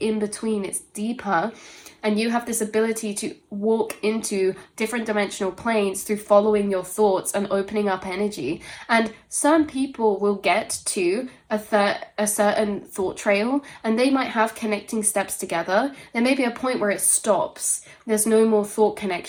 between, it's deeper. And you have this ability to walk into different dimensional planes through following your thoughts and opening up energy. And some people will get to a certain thought trail, and they might have connecting steps together. There may be a point where it stops. There's no more thought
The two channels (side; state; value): both; identical; correlation 1.00